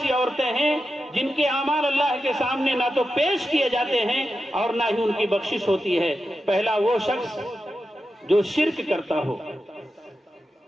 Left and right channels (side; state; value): both; normal; correlation 0.90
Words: عورتیں ہیں جن کے اعمال اللہ کے سامنے نہ تو پیش کیے جاتے ہیں اور نہ ہی ان کی بخشش ہوتی ہے۔ پہلا وہ شخص جو شرک کرتا ہو،